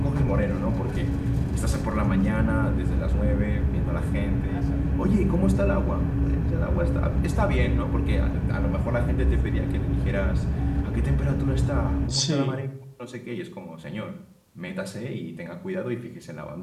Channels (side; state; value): both; identical; correlation 1.00